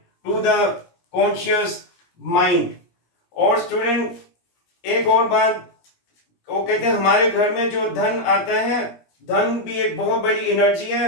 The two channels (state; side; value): late; right; 17 ms